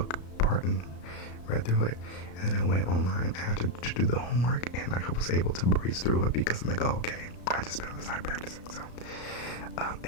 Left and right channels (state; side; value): late; right; 34 ms